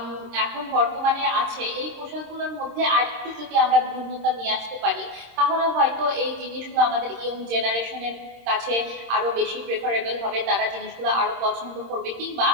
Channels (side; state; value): left; late; 26 ms